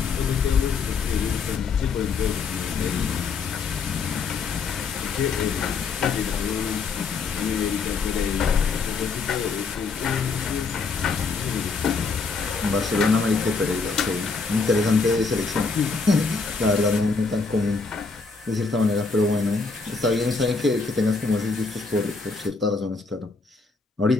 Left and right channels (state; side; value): quieter; right; 4.5 dB